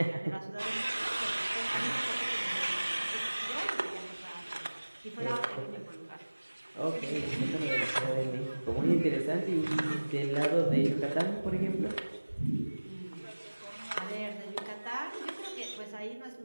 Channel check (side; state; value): both; inverted; correlation -1.00